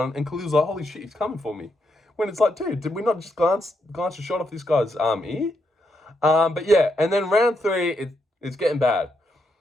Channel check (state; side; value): normal; both; correlation 0.80